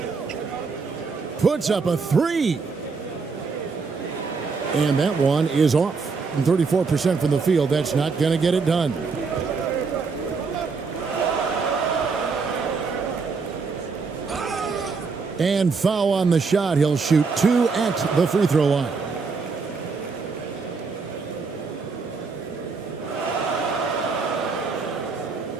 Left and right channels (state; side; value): quieter; left; 4.7 dB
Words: Puts up a 3. And that one is off. 34% from the field. That's not going to get it done. And foul on the shot. He'll shoot 2 at the free throw line.